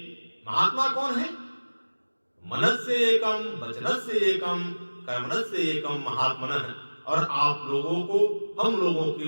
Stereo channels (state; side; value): inverted; both; correlation -1.00